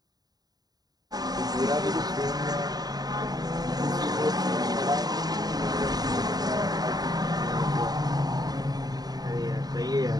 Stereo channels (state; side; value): late; left; 0.19 ms